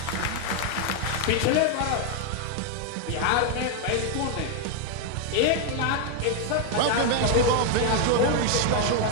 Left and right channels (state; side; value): different; both; correlation 0.01